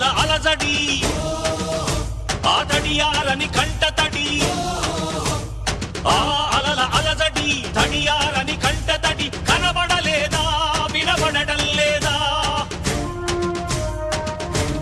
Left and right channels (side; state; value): both; identical; correlation 1.00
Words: అలజడి ఆ తడియారని కంట తడి ఆ అలల అలజడి తడియారని కంట తడి కనబడలేదా వినబడటం లేదా